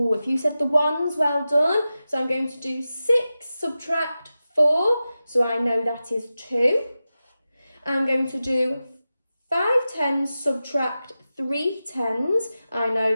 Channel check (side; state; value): both; inverted; correlation -0.93